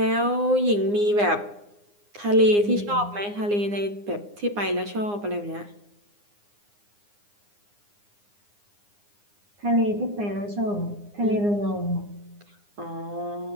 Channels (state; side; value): late; left; 9.8 ms